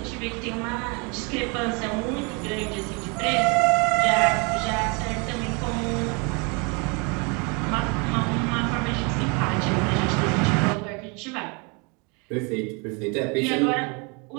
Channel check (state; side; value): quieter; left; 31.7 dB